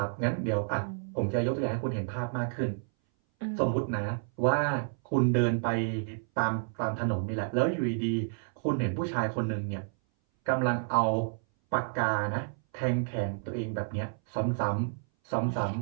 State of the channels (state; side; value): silent; left; 58 dB below the other